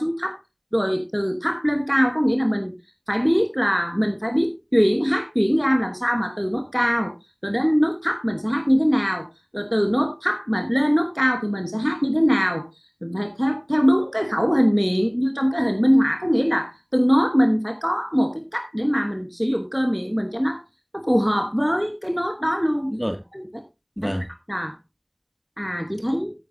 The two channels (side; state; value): both; identical; correlation 1.00